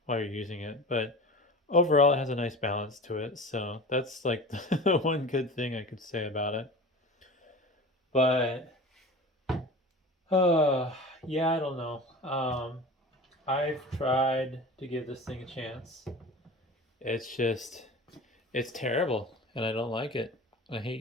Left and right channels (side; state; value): both; normal; correlation 0.35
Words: while you're using it. But overall, it has a nice balance to it. So that's like the one good thing I could say about it. But uh, yeah, I don't know. I've tried to give this thing a chance. It's just it's terrible, and I don't like it. I